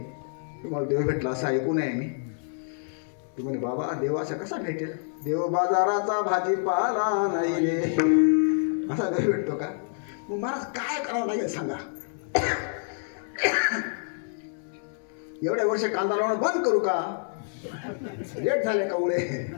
तुम्हाला देव भेटला असं ऐकून आहे मी. तू म्हणे बाबा देव असा कसा भेटेल? देव बाजाराचा भाजीपाला नाही रे, असा देव भेटतो का? मग महाराज काय करावं लागेल सांगा? एवढ्या वर्ष कांदा लावणं बंद करू का? लेट झाले का उडे?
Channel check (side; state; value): right; silent; 60 dB below the other